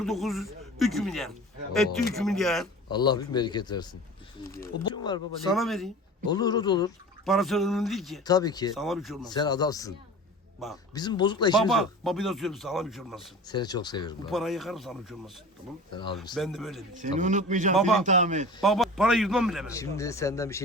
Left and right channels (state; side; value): normal; both; correlation 0.37